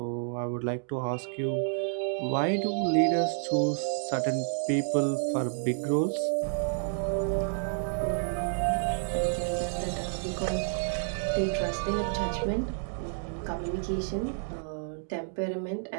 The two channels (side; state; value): left; silent; 58 dB below the other